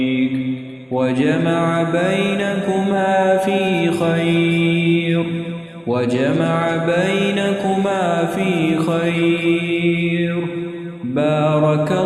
وجمع بينكما في خير. وجمع بينكما في خير. بارك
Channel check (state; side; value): identical; both; correlation 1.00